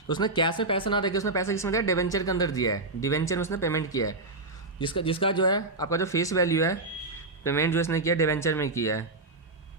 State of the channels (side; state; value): left; quieter; 3.1 dB